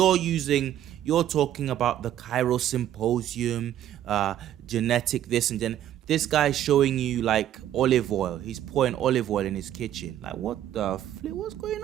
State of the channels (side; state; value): left; quieter; 11.7 dB